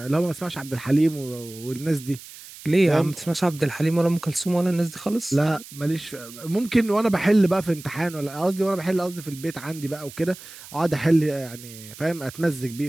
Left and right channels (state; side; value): noise; right; hiss, 17 dB below the sound